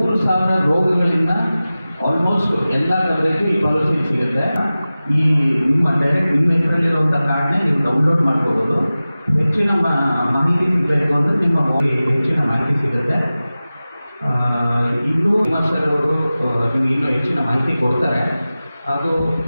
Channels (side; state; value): both; inverted; correlation -0.96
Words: ರೋಗಗಳಿಂದ ಆಲ್ಮೋಸ್ಟ್ ಎಲ್ಲ ಕವರೇಜು ಈ ಪಾಲಿಸಿ ಸಿಗುತ್ತೆ. ಈ ನಿಮ್ಮ ಹೆಸರಲ್ಲಿರುವಂಥ ಕಾರ್ಡ್ನೇ ನೀವು ಡೌನ್ಲೋಡ್ ಮಾಡ್ಕೋಬೋದು. ಹೆಚ್ಚಿನ ಮಾಹಿತಿ ಸಿಗಬೇಕು ಅಂದರೆ ನಿಮ್ಮ ಹೆಚ್ಚಿನ ಮಾಹಿತಿ ಸಿಗುತ್ತೆ. ಇನ್ನೂ ಸರ್ ಅವರು ನಿಮಗೆ ಇನ್ನೂ ಹೆಚ್ಚಿನ ಮಾಹಿತಿ ಕೊಡ್ತಾರೆ. ಅದು